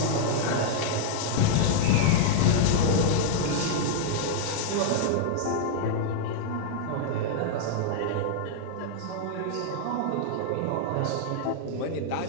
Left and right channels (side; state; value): both; different; correlation -0.01